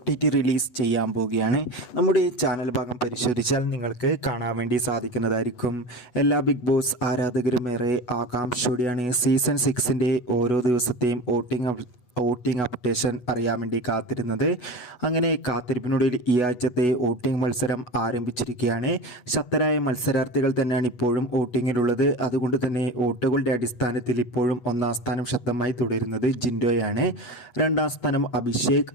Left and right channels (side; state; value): right; late; 8.1 ms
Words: റിലീസ് ചെയ്യാൻ പോവുകയാണ്. നമ്മുടെ ചാനൽ ഭാഗം പരിശോധിച്ചാൽ നിങ്ങൾക്ക് കാണാൻ വേണ്ടി സാധിക്കുന്നതായിരിക്കും. എല്ലാ ബിഗ് ബോസ് ആരാധകരും ഏറെ ആകാംക്ഷയോടെയാണ് സീസൺ 6ൻ്റെ ഓരോ ദിവസത്തെയും വോട്ടിംഗ് അപ്ഡേഷൻ അറിയാൻ വേണ്ടി കാത്തിരുന്നത്. അങ്ങനെ കാത്തിരിപ്പിനൊടുവിൽ ഈ ആഴ്ചത്തെ വോട്ടിംഗ് മത്സരം ആരംഭിച്ചിരിക്കുകയാണ്. ശക്തരായ മത്സരാർത്ഥികൾ തന്നെയാണ് ഇപ്പോഴും വോട്ടിങ്ങിലുള്ളത്. അതുകൊണ്ട് തന്നെ വോട്ടുകളുടെ അടിസ്ഥാനത്തിൽ ഇപ്പോഴും ഒന്നാം സ്ഥാനം ശക്തമായി തുടരുന്നത് ജിൻഡോയാണ്. രണ്ടാം സ്ഥാനം അഭിഷേക്,